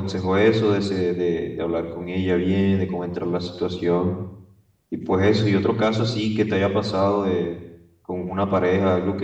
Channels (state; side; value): identical; both; correlation 1.00